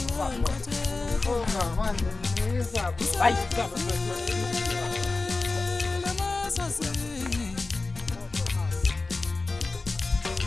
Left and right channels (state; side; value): quieter; right; 3.6 dB